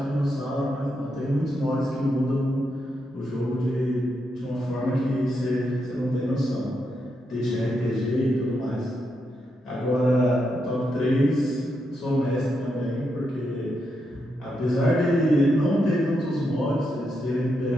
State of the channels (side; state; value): both; normal; correlation 0.83